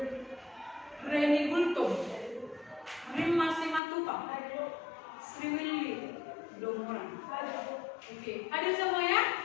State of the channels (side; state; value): right; drops out; at 3.8 s